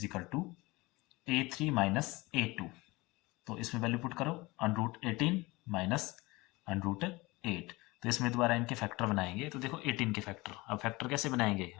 equal to a3 minus a2। तो इसमें वैल्यू पुट करो, √18 माइनस √8। तो इसमें दोबारा इनके फैक्टर बनाएंगे। तो देखो 18 के फैक्टर, अब फैक्टर कैसे बनाएंगे,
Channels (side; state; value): right; quieter; 22.4 dB